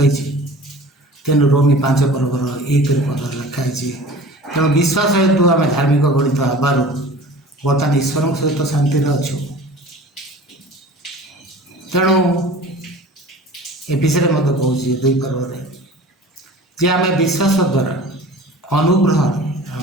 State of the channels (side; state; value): both; normal; correlation 0.42